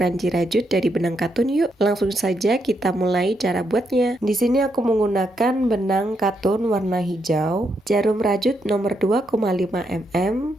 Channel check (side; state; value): both; normal; correlation 0.79